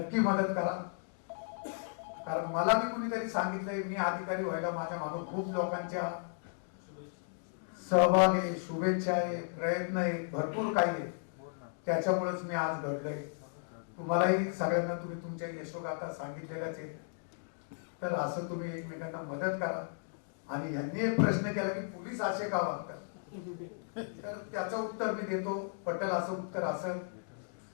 मदत करा. कारण मला मी कुणीतरी सांगितलंय मी अधिकारी व्हायला माझ्या मागून खूप लोकांच्या सहभाग आहे, शुभेच्छा आहे, प्रयत्न आहे, भरपूर काही आहे. त्याच्यामुळेच मी आज घडलोय. तुम्हालाही सगळ्यांना तुम्ही तुमच्या यशोगाथा सांगितलेल्याच आहे. तर असं तुम्ही एकमेकांना मदत करा. आणि यांनी एक प्रश्न केला की पोलीस असे का वागतात, तर त्याचं उत्तर मी देतो. पटेल असं उत्तर असेल,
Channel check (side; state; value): right; silent; digital silence